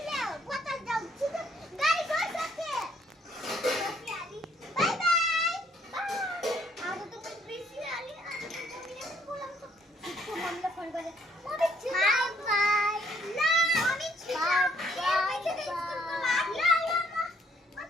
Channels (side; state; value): both; normal; correlation 0.67